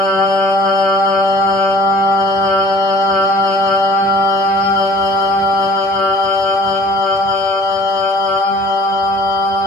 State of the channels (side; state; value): both; normal; correlation 0.50